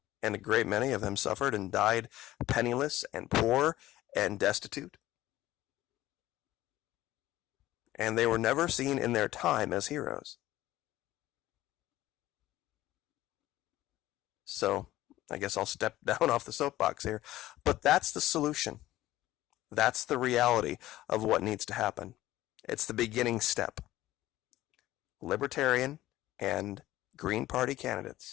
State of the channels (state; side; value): quieter; right; 15.6 dB